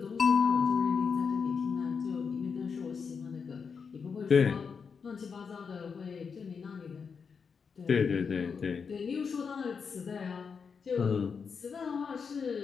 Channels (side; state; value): right; quieter; 5.9 dB